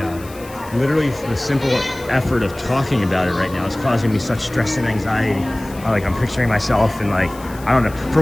it. Literally the simple effort of talking about it right now is causing me such stress and anxiety. Like I'm picturing myself and like, I don't know,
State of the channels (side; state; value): left; noise; hiss, 20 dB below the sound